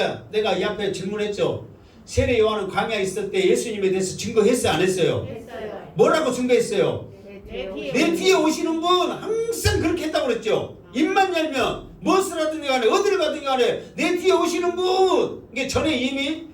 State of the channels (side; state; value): both; identical; correlation 1.00